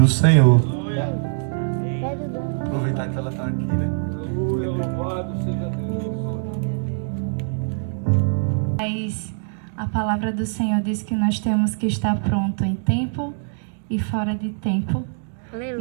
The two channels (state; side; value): silent; left; digital silence